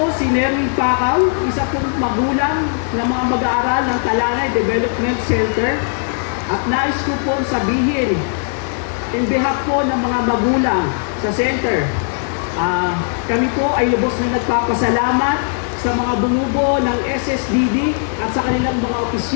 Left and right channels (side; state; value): right; silent; 62 dB below the other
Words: si Nerwin Pacao, isa pong magulang ng mga mag-aaral ng Talanay Development Center. At nais ko po sabihin, in behalf po ng mga magulang sa center, kami po ay lubos na nagpapasalamat sa mga bumubuo ng SSDD at sa kanilang mga